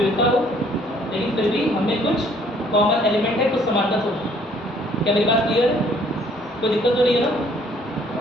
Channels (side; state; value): both; normal; correlation 0.61